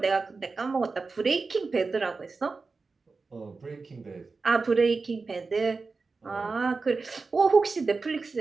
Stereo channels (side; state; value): left; quieter; 4.2 dB